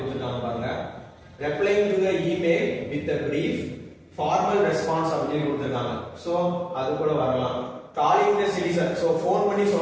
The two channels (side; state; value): both; identical; correlation 1.00